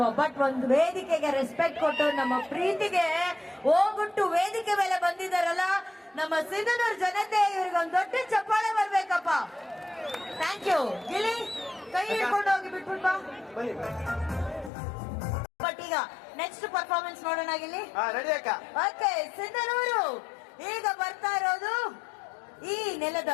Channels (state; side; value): drops out; right; at 14.7 s